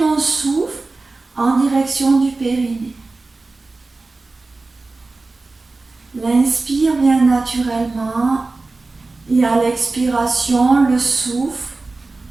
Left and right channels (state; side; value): quieter; left; 3.5 dB